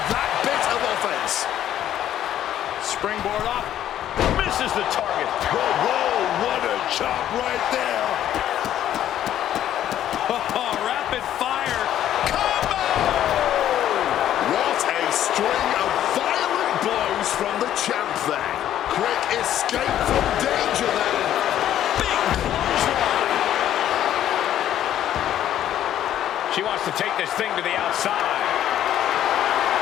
that bit of offense. Springboard up. Misses the target. Whoa, whoa, what a chop right there. Oh, rapid fire. Combo! What a string of violent blows from the champ there. Quick escape from danger there. Big clothesline. She wants to take this thing to the outside.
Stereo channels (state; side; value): quieter; right; 11.5 dB